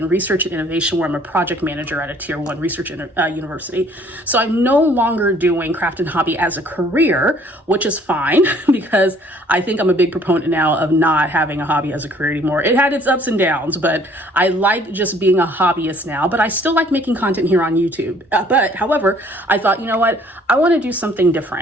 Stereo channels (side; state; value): both; normal; correlation 0.58